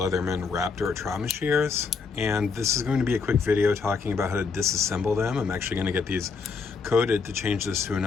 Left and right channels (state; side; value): quieter; right; 4.9 dB